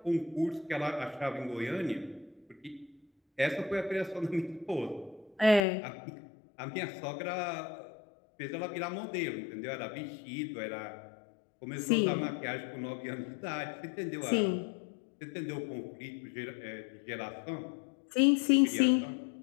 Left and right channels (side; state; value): right; drops out; at 5.6 s